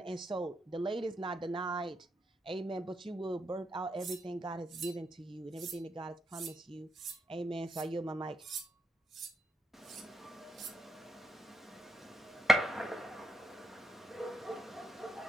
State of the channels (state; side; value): normal; both; correlation 0.81